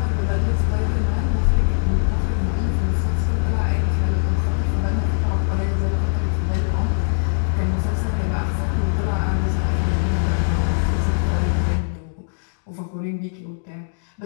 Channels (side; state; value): right; silent; digital silence